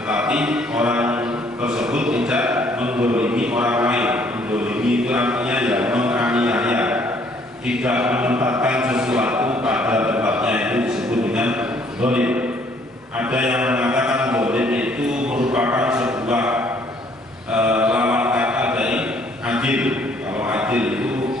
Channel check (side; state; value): both; normal; correlation 0.63